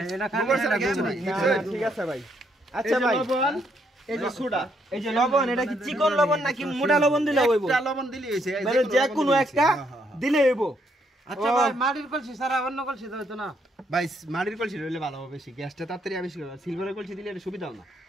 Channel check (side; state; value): both; normal; correlation 0.73